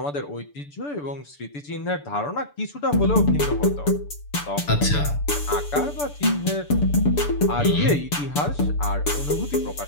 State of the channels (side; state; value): right; late; 6.9 ms